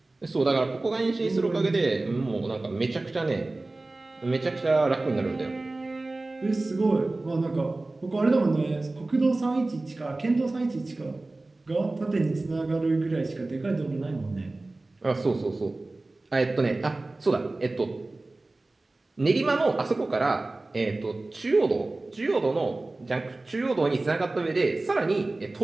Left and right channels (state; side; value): quieter; left; 3.0 dB